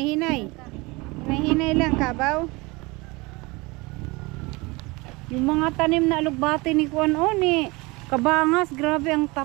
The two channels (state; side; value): quieter; left; 24.4 dB